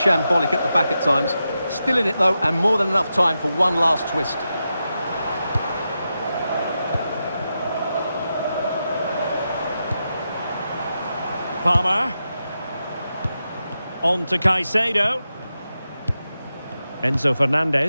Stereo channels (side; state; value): both; inverted; correlation -0.88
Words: at the back at times. Still in it, though, and more than enough time for one last twist. Palmer. On to Caicedo. Enzo